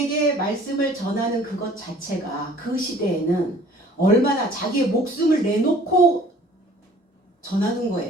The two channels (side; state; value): both; normal; correlation 0.53